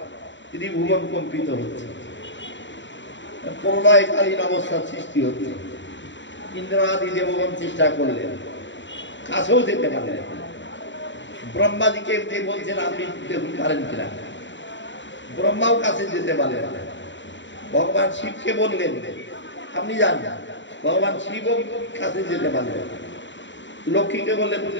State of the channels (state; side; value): late; right; 0.54 ms